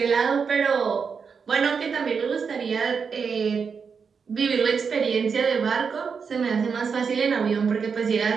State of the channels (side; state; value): left; quieter; 5.9 dB